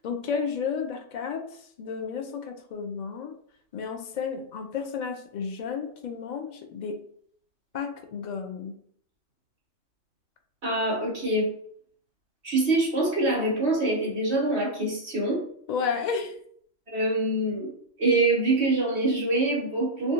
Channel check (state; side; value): late; left; 3.1 ms